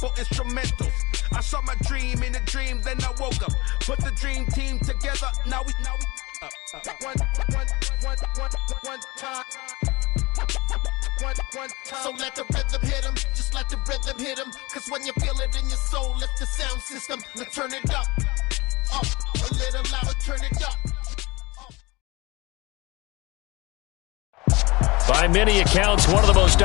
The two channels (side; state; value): right; quieter; 23.2 dB